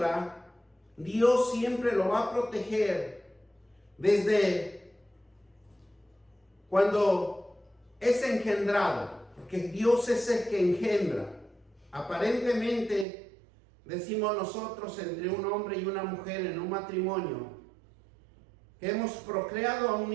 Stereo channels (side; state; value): left; drops out; at 13.1 s